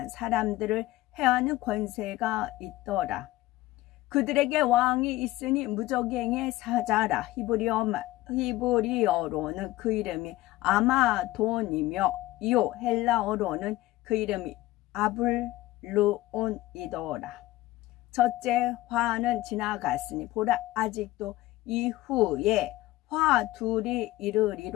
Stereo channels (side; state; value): right; quieter; 17.4 dB